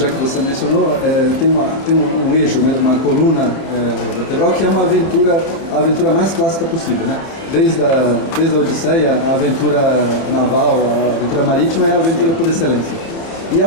que você mencionou, tem um eixo mesmo, uma coluna vertebral, que é a aventura mais clássica possível, né? Desde a Odisseia, a aventura naval, a aventura marítima é a aventura por excelência. E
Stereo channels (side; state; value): right; late; 29 ms